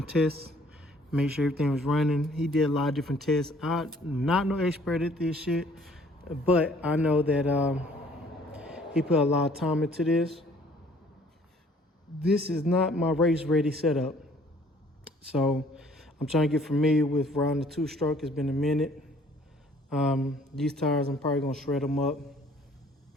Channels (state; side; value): normal; both; correlation 0.57